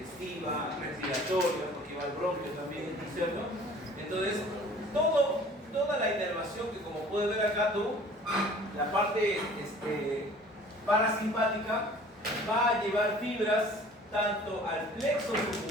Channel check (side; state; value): both; normal; correlation 0.49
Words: respiratoria, porque va al bronquio también, ¿no es cierto? Entonces, toda la inervación que, como puedes ver acá tú, la parte parasimpática va a llevar fibras tanto al plexo